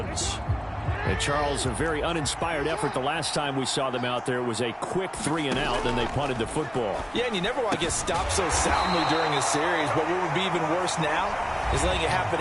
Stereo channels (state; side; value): identical; both; correlation 1.00